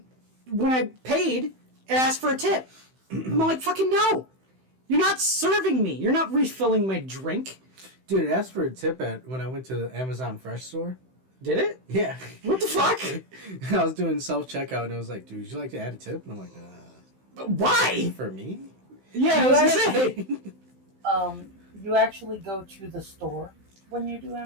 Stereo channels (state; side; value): late; left; 16 ms